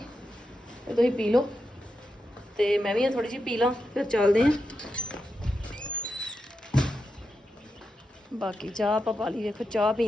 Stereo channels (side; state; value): both; normal; correlation 0.87